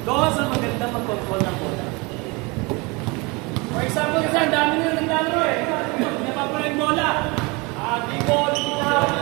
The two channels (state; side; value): quieter; left; 27.1 dB